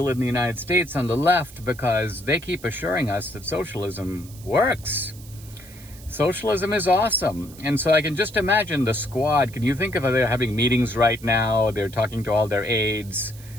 in the United States on the left because they keep assuring us that socialism works. Socialism is awesome. And so I can just imagine the squad. Can you think of they're having meetings right now? They're talking to all their aides,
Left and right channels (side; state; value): right; noise; hiss, 20 dB below the sound